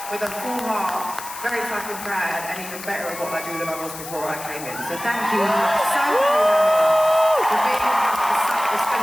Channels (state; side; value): noise; left; hiss, 12 dB below the sound